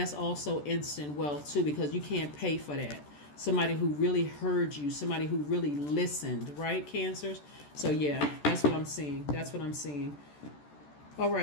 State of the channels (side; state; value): right; late; 14 ms